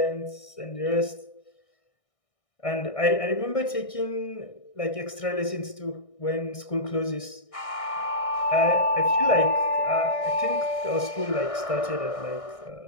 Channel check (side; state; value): right; late; 1.6 ms